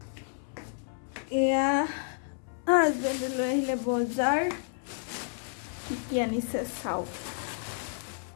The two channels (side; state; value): right; silent; 57 dB below the other